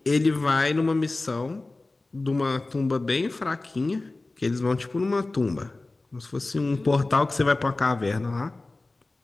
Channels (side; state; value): right; quieter; 3.1 dB